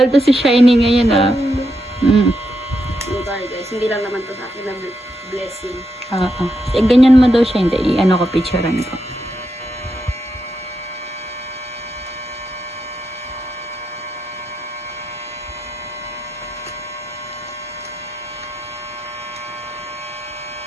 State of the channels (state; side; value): normal; both; correlation 0.83